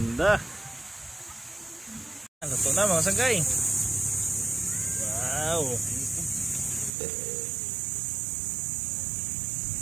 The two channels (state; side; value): drops out; left; at 6.9 s